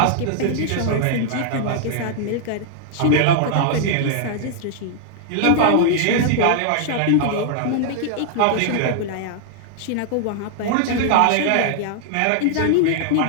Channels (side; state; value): both; different; correlation 0.00